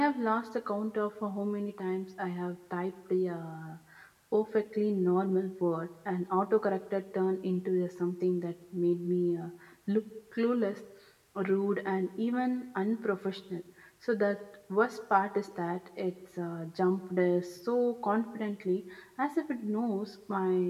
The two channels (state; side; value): identical; both; correlation 1.00